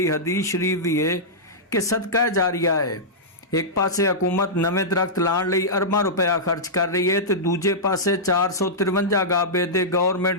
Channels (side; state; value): both; normal; correlation -0.12